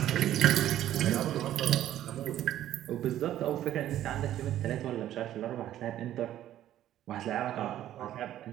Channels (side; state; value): left; quieter; 12.5 dB